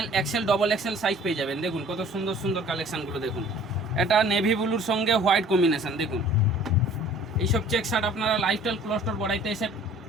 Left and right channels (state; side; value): normal; both; correlation 0.51